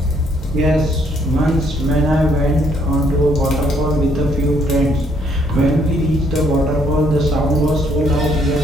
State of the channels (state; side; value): normal; both; correlation 0.68